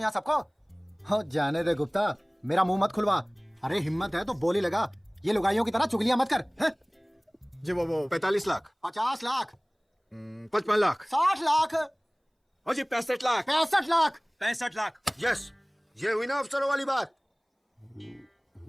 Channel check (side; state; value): both; identical; correlation 1.00